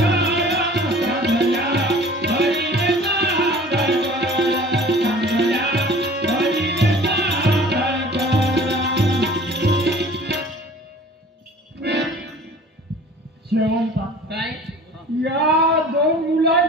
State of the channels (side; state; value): both; normal; correlation 0.46